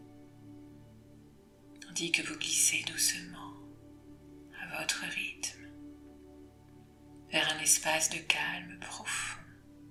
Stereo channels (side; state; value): both; identical; correlation 1.00